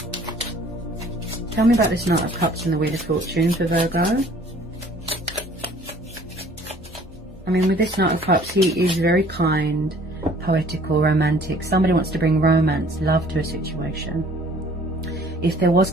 Tell me about this Knight of Cups and the Wheel of Fortune for Virgo. I mean, with this Knight of Cups, he is very kind, poetical, romantic. Somebody wants to bring romance, love to a situation. If there was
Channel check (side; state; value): both; normal; correlation 0.54